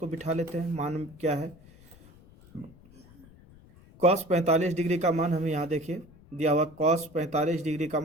बिठा लेते हैं। मान क्या है? cos 45 डिग्री का मान हमें यहाँ देखिए दिया हुआ। cos 45 डिग्री का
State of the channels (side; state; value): left; noise; rumble, 24 dB below the sound